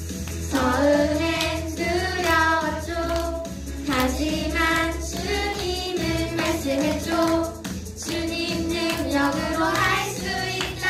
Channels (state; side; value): identical; both; correlation 1.00